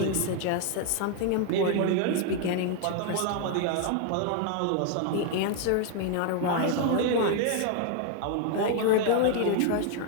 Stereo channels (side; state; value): both; different; correlation 0.00